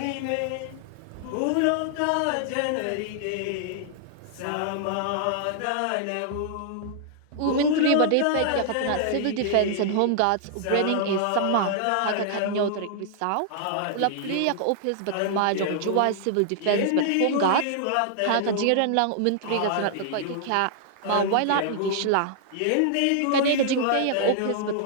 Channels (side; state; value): both; different; correlation -0.01